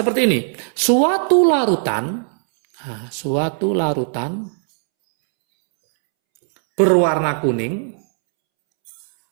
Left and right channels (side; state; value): left; silent; 67 dB below the other